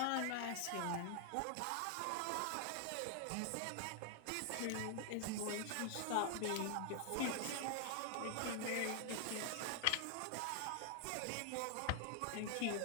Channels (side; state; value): both; different; correlation 0.00